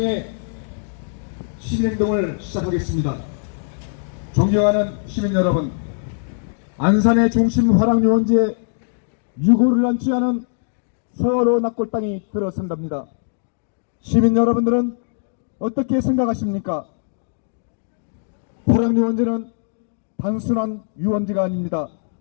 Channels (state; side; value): silent; right; digital silence